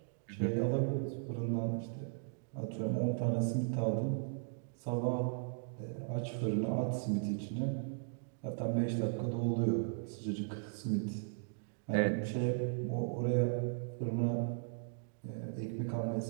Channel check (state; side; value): silent; left; digital silence